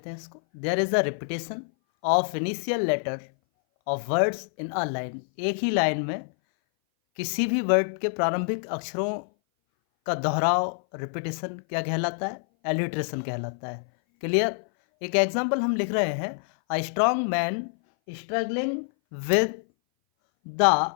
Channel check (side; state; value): right; silent; 58 dB below the other